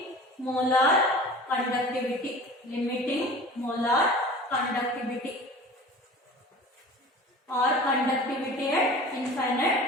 molar conductivity. Limiting molar conductivity or conductivity at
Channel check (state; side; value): normal; both; correlation 0.39